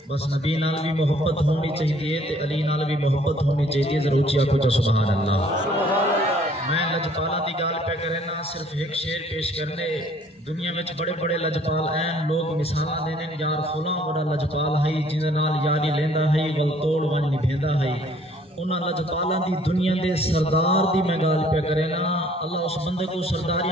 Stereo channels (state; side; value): normal; both; correlation 0.58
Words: بس نبی نال بھی محبت ہونی چاہیے تے علی نال بھی محبت ہونی چاہیے۔ ذرا اونچی آکھو جا سبحان اللہ۔ میں لجپالا دی گال پہ کرے نا، صرف ایک شعر پیش کرنے۔ دنیا میں بڑے بڑے لجپال ہیں، لوگ مثالاں دینے یار فلاں بڑا لجپال ہے جن نال یاری لیندا ہے ول توڑ ون نبھیندا ہے۔ انہاں لجپالاں دی دنیا دے سردار دی میں گال پہ کرے نا، اللہ اس بندے کو